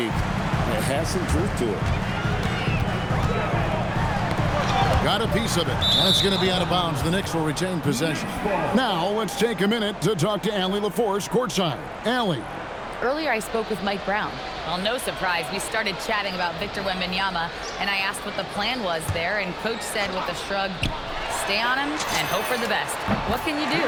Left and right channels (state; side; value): identical; both; correlation 1.00